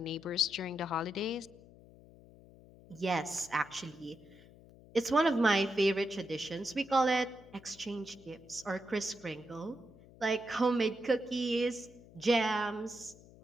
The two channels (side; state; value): left; noise; hum, 22 dB below the sound